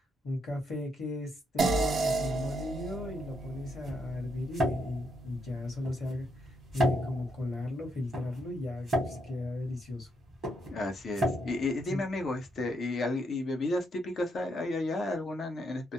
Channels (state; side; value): normal; both; correlation 0.77